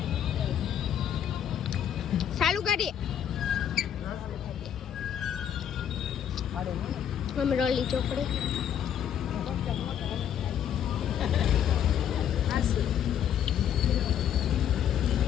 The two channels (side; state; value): right; quieter; 9.4 dB